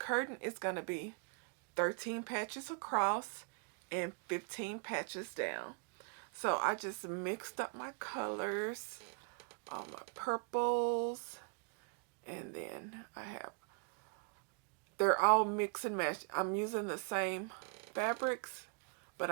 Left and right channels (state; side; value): quieter; left; 38.7 dB